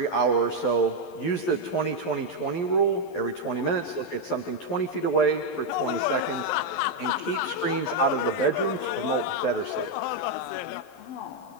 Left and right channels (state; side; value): late; right; 11 ms